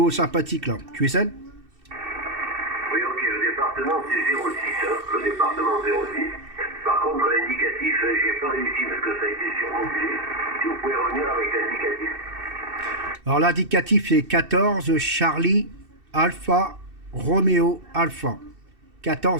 sympathique là. QSL. Oui, ok, le département c'est 06, hein, le département 06. Par contre, l'indicatif, j'ai pas réussi parce que ça a été surmodulé. Si vous pouvez revenir avec l'indicatif. Alors l'indicatif c'est 14 Charlie Alpha Romeo Alpha.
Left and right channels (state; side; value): late; left; 2.7 ms